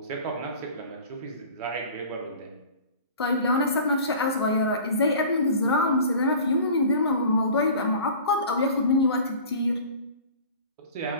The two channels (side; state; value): both; inverted; correlation -0.42